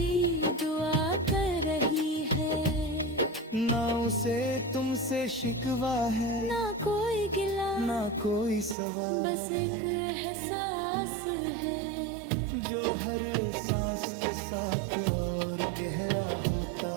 दुआ कर रही है। ना उसे तुमसे शिकवा है, ना कोई गिला, ना कोई सवाल, बस एक एहसास है जो हर सांस के साथ और गहरा होता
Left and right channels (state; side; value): drops out; left; at 8.8 s